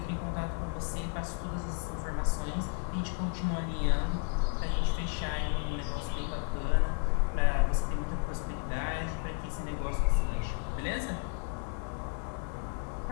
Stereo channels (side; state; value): right; quieter; 35.0 dB